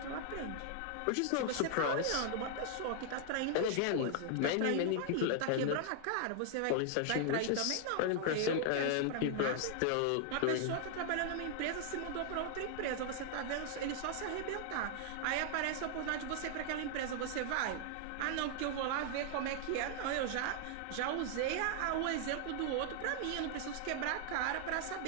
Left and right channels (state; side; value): different; both; correlation 0.00